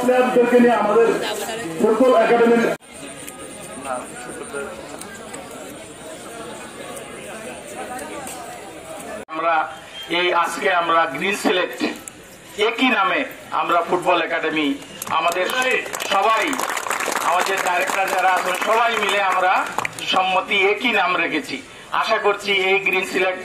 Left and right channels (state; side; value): identical; both; correlation 1.00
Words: প্লেয়ারদেরকে নিয়ে আমাদের ফুটবল একাডেমির আজকে আমরা গ্রিন সিলেট একই নামে আমরা ফুটবল একাডেমি আমাদের সবাই আমাদের ডাইরেক্টর যারা আছেন সবাই মিলে আমরা সম্মতি একই নাম রেখেছি। আশা করছি এই গ্রিন সিলেট